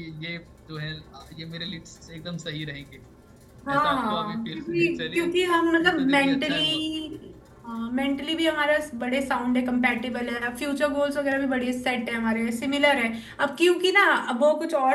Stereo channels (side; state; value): both; identical; correlation 1.00